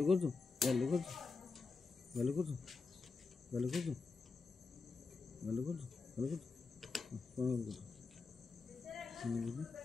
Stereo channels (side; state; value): right; quieter; 4.3 dB